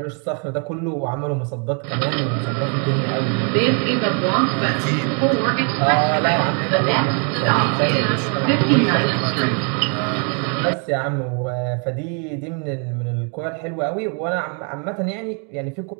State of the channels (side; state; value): left; quieter; 39.7 dB